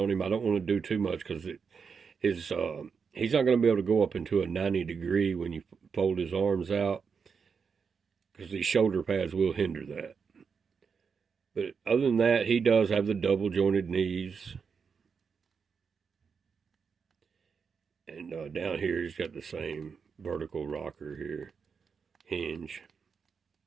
him. I don't want to do too much because he's not going to be able to go up into a 90 degree when you fold his arms out, because these shoulder pads will hinder that. But other than that, he does have the double jointed knees. And down here, he's got the same vertical rocker here, hinge.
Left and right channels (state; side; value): quieter; left; 5.9 dB